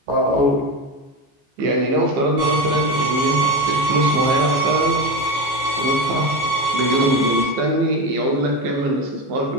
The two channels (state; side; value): late; left; 15 ms